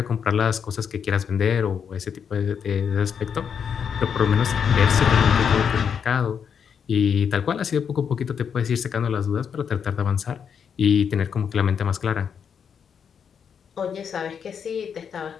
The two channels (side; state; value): right; quieter; 7.2 dB